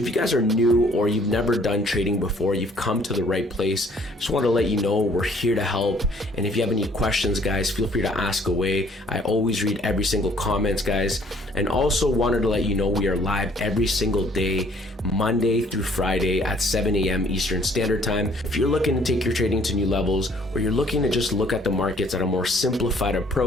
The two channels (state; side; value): normal; both; correlation 0.60